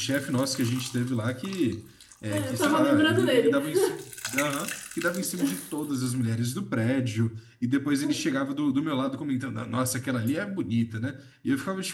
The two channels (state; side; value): identical; both; correlation 1.00